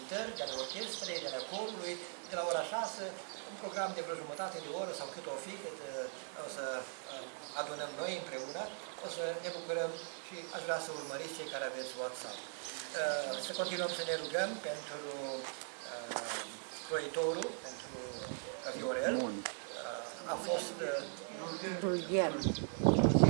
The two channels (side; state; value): left; silent; 51 dB below the other